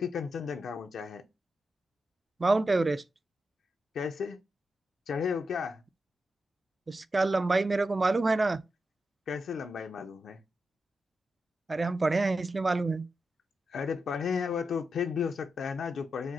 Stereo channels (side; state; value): both; normal; correlation 0.88